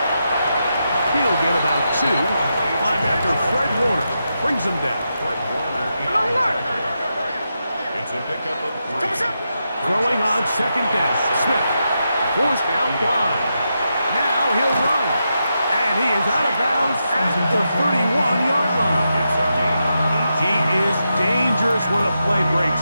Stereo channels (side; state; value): both; inverted; correlation -0.86